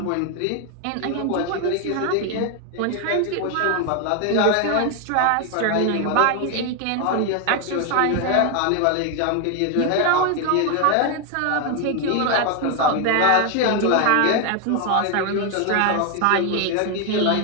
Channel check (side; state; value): both; different; correlation 0.01